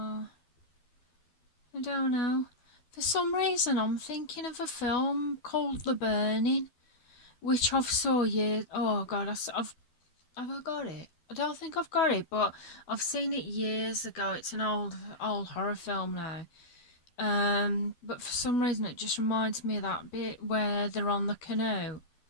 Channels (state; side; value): late; right; 12 ms